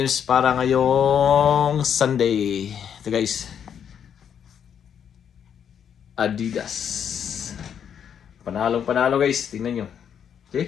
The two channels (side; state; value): right; quieter; 8.3 dB